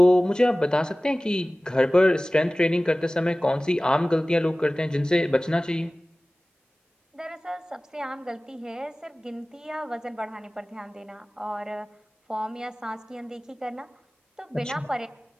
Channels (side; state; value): both; normal; correlation 0.98